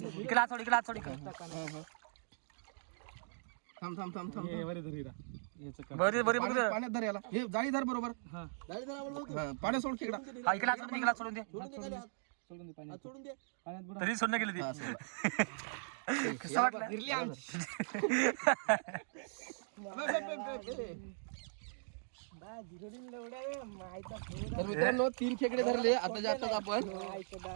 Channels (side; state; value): left; silent; digital silence